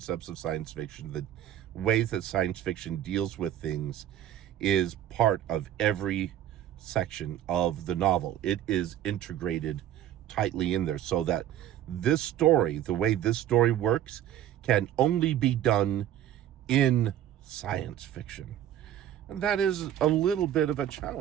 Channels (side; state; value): left; quieter; 11.4 dB